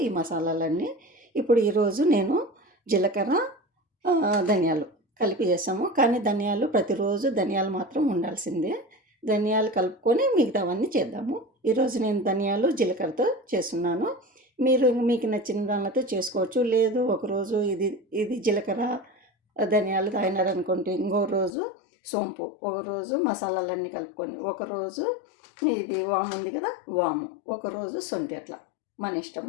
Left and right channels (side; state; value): right; drops out; at 21.5 s